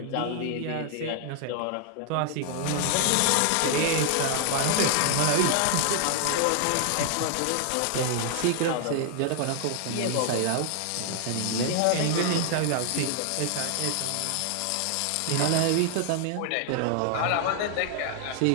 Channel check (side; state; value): both; different; correlation 0.00